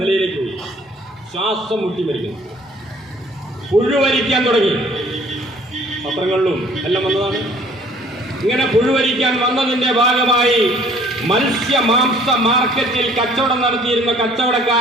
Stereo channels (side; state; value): both; normal; correlation 0.56